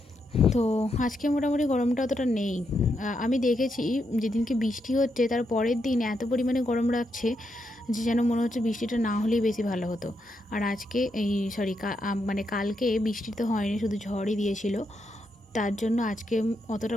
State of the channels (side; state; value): both; normal; correlation 0.81